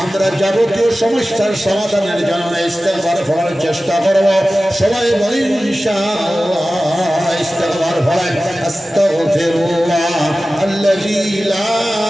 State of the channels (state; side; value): normal; both; correlation 0.95